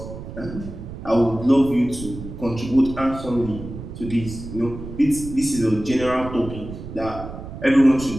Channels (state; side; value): noise; right; rumble, 11 dB below the sound